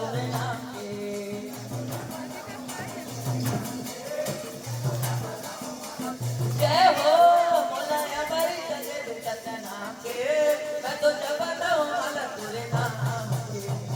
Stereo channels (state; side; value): identical; both; correlation 1.00